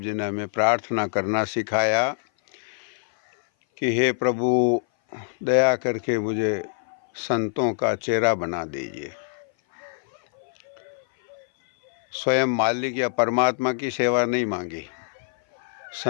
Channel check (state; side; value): silent; right; 58 dB below the other